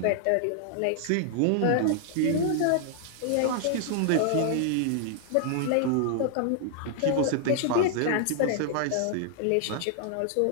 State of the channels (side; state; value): both; different; correlation 0.00